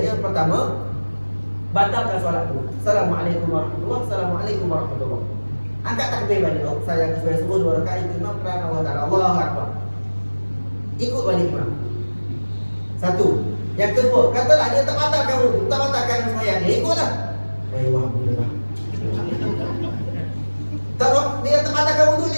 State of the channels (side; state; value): both; inverted; correlation -1.00